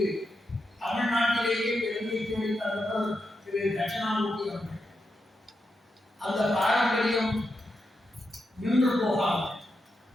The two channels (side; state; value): both; normal; correlation 0.86